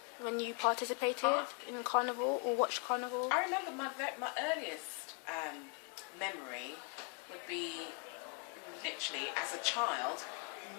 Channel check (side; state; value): right; quieter; 36.2 dB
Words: when you participated in Carnival or watched Carnival? I remember my earliest memory would be literally as a child,